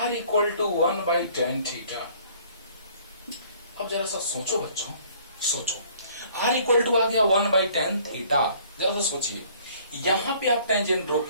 equal to 1/tan theta. अब जरा सा सोचो बच्चों, सोचो, R इक्वल टू आ गया 1/tan थीटा। जरा सा सोचिए, यहां पे आप टेंजेंट ड्रॉ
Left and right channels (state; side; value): inverted; both; correlation -0.57